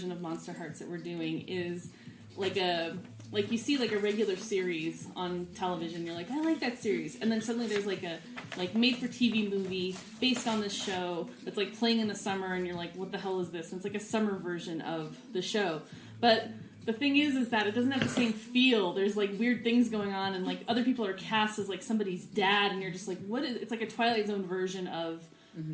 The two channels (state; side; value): identical; both; correlation 1.00